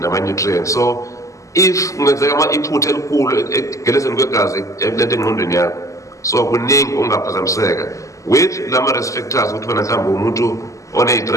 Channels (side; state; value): right; late; 0.16 ms